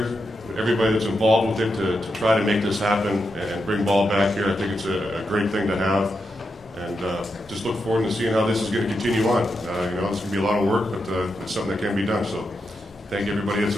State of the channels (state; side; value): normal; both; correlation 0.85